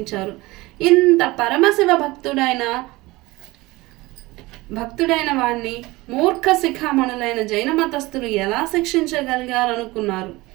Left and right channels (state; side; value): quieter; left; 21.0 dB